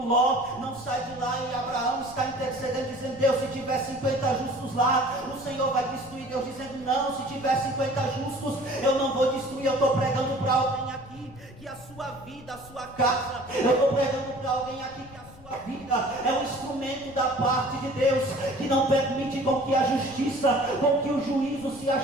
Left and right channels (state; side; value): noise; left; rumble, 20 dB below the sound